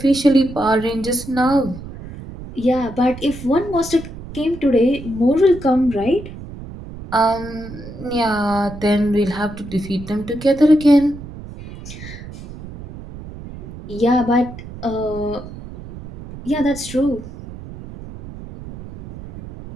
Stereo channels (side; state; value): right; noise; rumble, 13 dB below the sound